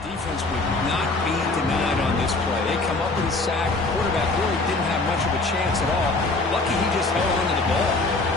defense would not be denied on this play. They come up with a sack. The quarterback really didn't have much of a chance at all. Lucky he just held on to the ball.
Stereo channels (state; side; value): quieter; right; 3.3 dB